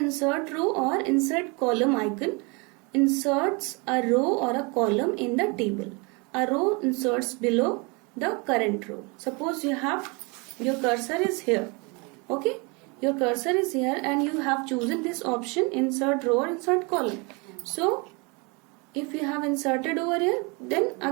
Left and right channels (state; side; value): quieter; left; 30.0 dB